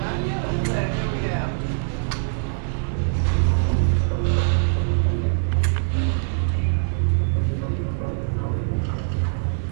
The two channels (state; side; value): silent; left; digital silence